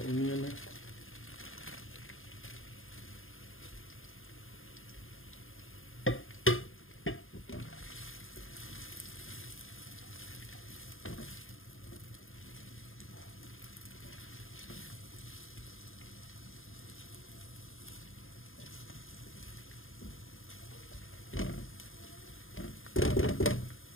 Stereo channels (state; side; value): late; right; 0.59 ms